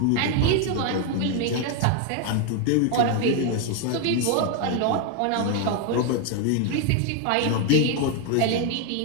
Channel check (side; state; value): both; different; correlation 0.01